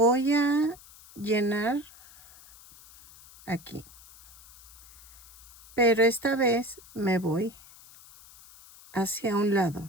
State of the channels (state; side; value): noise; left; hiss, 22 dB below the sound